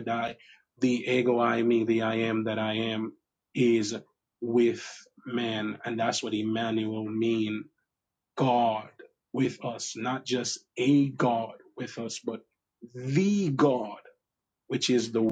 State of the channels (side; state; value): both; identical; correlation 1.00